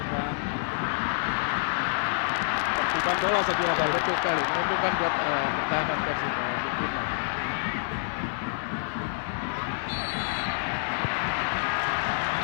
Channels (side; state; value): right; silent; digital silence